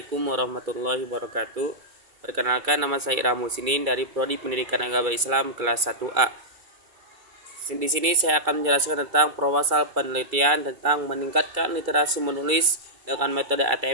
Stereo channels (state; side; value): late; left; 2.3 ms